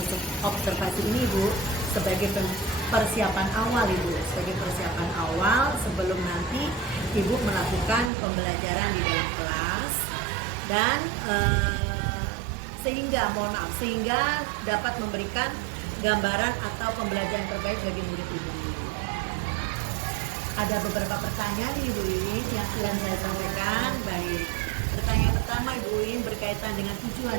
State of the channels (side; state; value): left; drops out; at 8.1 s